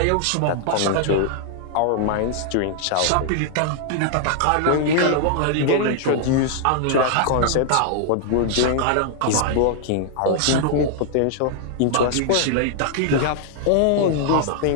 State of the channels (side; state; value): both; different; correlation 0.00